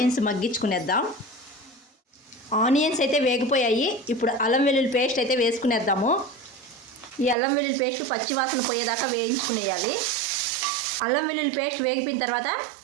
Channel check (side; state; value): left; drops out; at 7.4 s